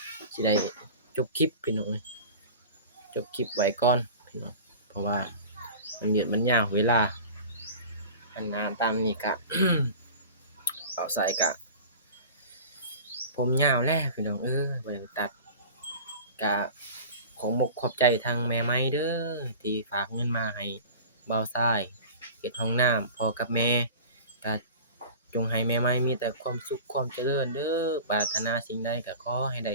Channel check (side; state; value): both; inverted; correlation -0.37